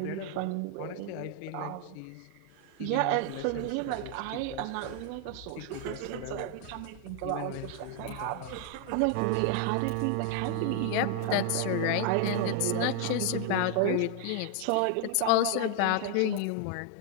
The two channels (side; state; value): both; different; correlation 0.00